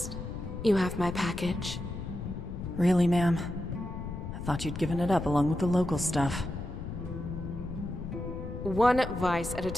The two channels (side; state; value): left; noise; rumble, 7 dB below the sound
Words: You have my package. Really, ma'am? I thought you'd given it up along with the local stuff. One vice at a